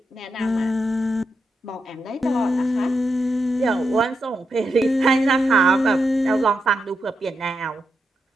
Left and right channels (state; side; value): normal; both; correlation 0.85